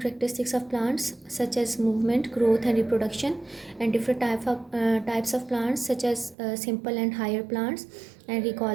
characteristics of plants such as movement, growth and reproduction, and different types of plants such as simple and higher plants, and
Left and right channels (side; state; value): left; drops out; at 6.4 s